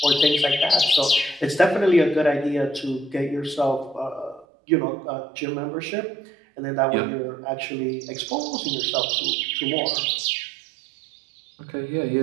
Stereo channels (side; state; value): left; drops out; at 4.5 s